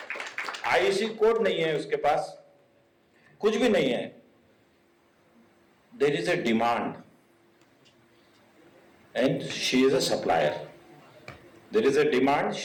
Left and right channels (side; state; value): both; identical; correlation 1.00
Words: आईसी कोड नहीं है उसके पास, कुछ भी नहीं है। There is a demand and she is a supplier. There is a demand,